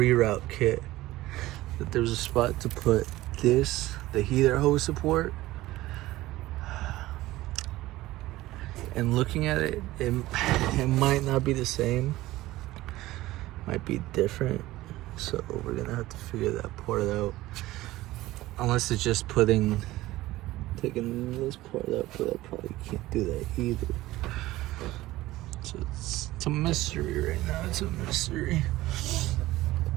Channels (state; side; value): quieter; left; 17.2 dB